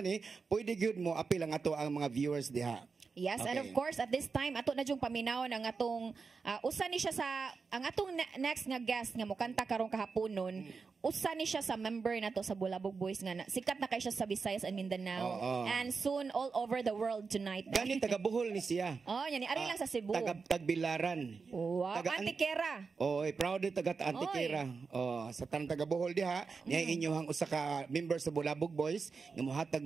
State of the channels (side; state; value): left; quieter; 4.9 dB